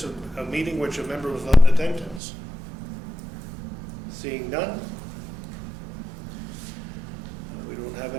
of a meeting which a member was not in attendance. Seeing none. We don't have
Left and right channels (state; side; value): drops out; left; at 2.2 s